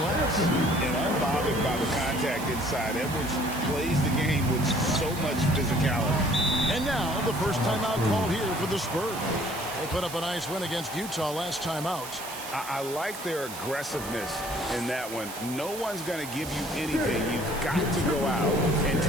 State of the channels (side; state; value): right; noise; hiss, 12 dB below the sound